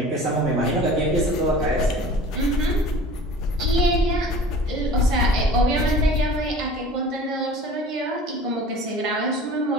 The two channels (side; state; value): both; normal; correlation 0.43